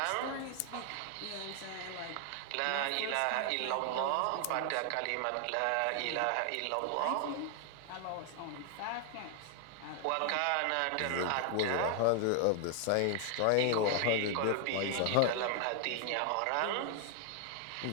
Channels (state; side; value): different; both; correlation 0.00